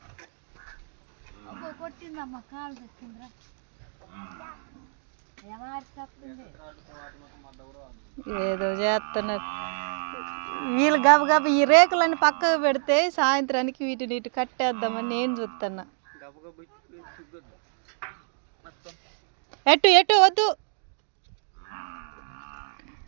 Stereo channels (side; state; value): left; silent; digital silence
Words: ఏదో చేస్తున్నారు వీళ్ళు. గబగబ ఈ రేకులన్నీ పక్కకు పెడితే సాయంత్రానికి వీటిని ఇటు కట్టేద్దామని నేను చూస్తున్నా. ఎటు వద్దు